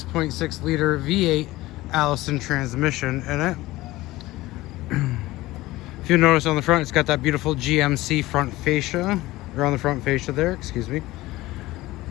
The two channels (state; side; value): quieter; right; 18.2 dB